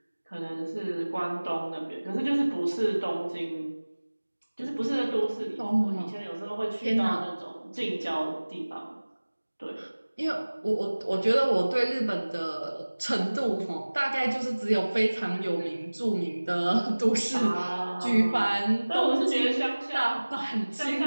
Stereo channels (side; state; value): both; inverted; correlation -1.00